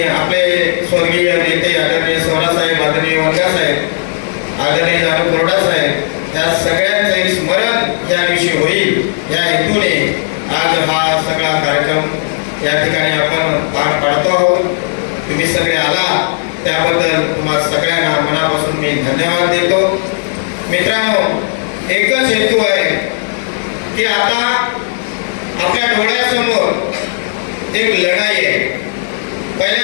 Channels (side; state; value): right; silent; digital silence